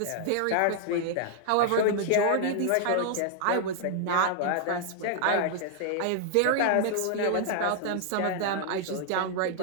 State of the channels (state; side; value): different; both; correlation -0.01